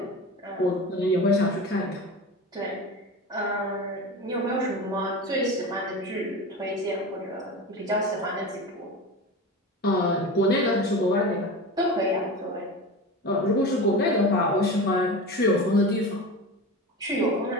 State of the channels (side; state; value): both; normal; correlation 0.28